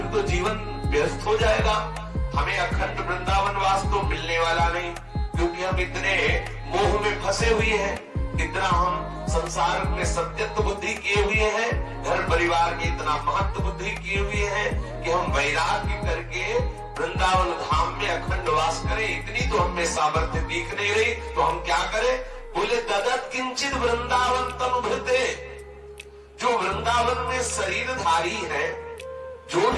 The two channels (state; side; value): identical; both; correlation 1.00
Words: तो जीवन व्यस्त हो जाएगा, हमें अखंड वृंदावन वास तो मिलने वाला नहीं, क्योंकि हम इतने मोह में फंसे हुए हैं, इतना हम संसार में सत्यत्व बुद्धि किए हुए हैं, घर परिवार की इतना महत्व बुद्धि किए हुए हैं कि हम वैराग्य करके वृंदावन धाम में अखंड वास करें, इतनी तो हमें सामर्थ्य दिख नहीं रही, तो हम क्या करें? बोले ददत किंचित वृंदावन तनुभृते। जो वृंदावन में शरीरधारी है, जो